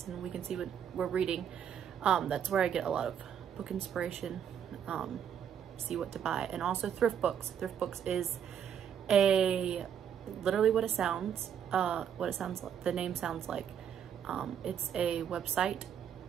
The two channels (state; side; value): quieter; left; 8.6 dB